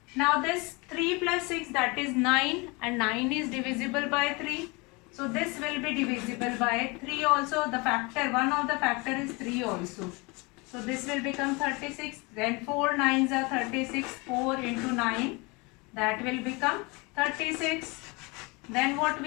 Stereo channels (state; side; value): quieter; right; 27.3 dB